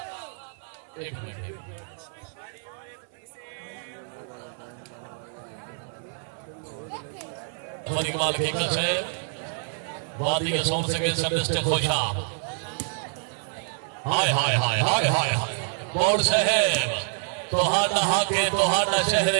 एक मिनट इकबाल की है वादी के सौंप सके सबसे खोजा हाय बोर्ड साहब तोहाडा हाके तोहाडा शहरे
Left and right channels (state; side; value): silent; left; 58 dB below the other